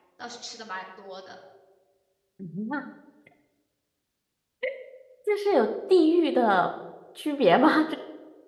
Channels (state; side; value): identical; both; correlation 1.00